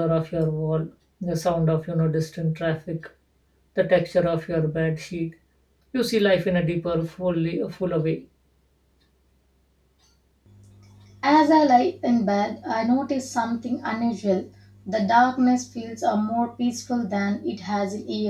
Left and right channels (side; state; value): both; identical; correlation 1.00